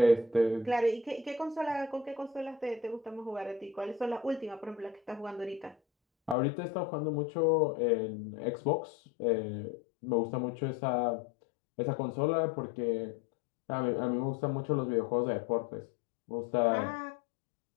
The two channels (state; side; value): drops out; right; at 6.4 s